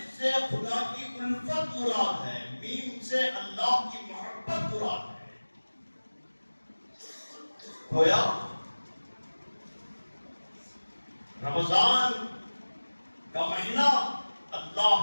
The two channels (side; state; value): both; inverted; correlation -1.00